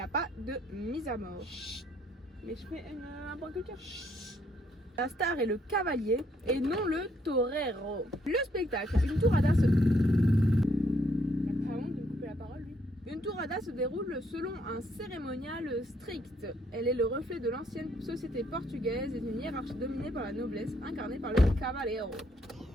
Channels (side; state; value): both; normal; correlation 0.70